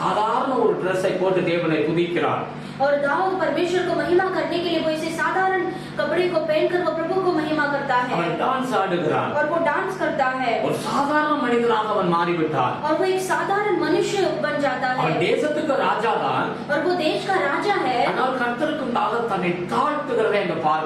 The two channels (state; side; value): identical; both; correlation 1.00